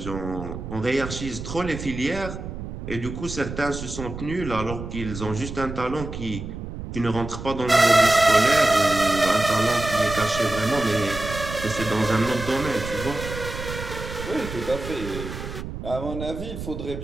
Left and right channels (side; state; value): right; noise; rumble, 8 dB below the sound